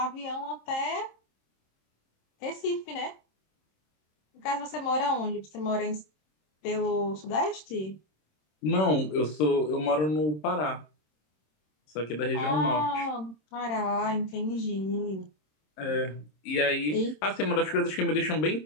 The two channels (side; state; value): right; late; 26 ms